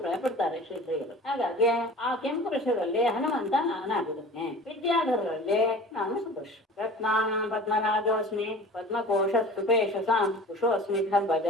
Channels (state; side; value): normal; both; correlation 0.40